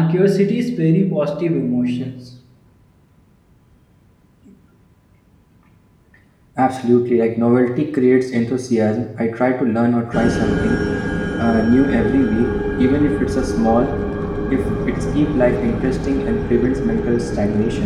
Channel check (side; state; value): both; identical; correlation 1.00